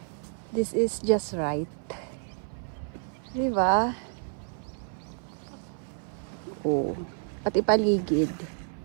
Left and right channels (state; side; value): silent; left; 58 dB below the other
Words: This is just right. Diba? Oh. At ipaligid.